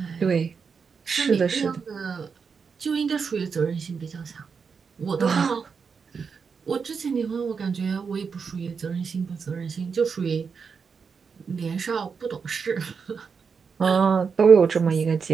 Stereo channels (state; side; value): quieter; left; 5.7 dB